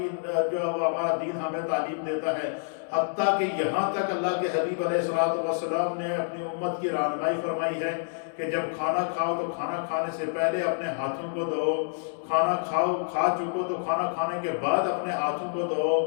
جو ہمارا دین ہمیں تعلیم دیتا ہے، حتیٰ کہ یہاں تک اللہ کے حبیب علیہ السلام نے اپنی امت کی رہنمائی فرمائی ہے کہ جب کھانا کھاؤ تو کھانا کھانے سے پہلے اپنے ہاتھوں کو دھو، کھانا کھا چکو تو کھانا کھانے کے بعد اپنے ہاتھوں کو دھو۔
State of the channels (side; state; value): right; silent; digital silence